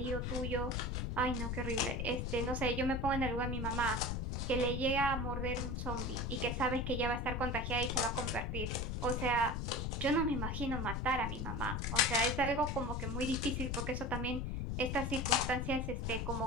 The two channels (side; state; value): left; noise; rumble, 1 dB below the sound